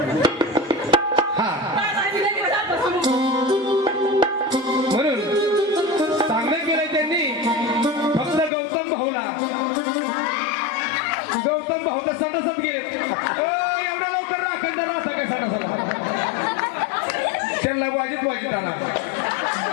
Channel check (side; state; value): right; drops out; at 8.5 s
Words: हा म्हणून चांगलं केलंय त्यांनी फक्त गौतम भाऊ तर सटासट गेले एवढ्या लवकर अखंड राहता काय सटासला त्यांना वाजित आणा